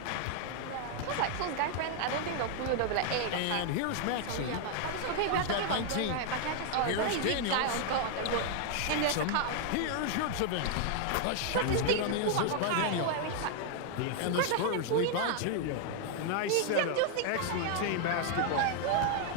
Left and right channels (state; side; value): different; both; correlation 0.00